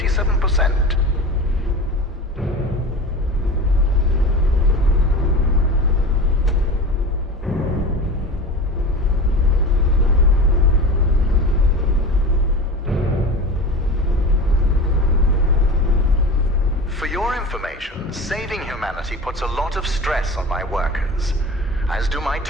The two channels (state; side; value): normal; both; correlation 0.31